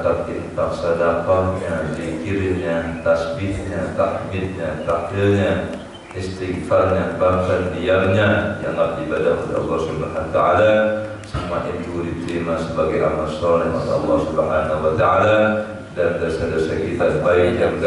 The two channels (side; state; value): both; identical; correlation 1.00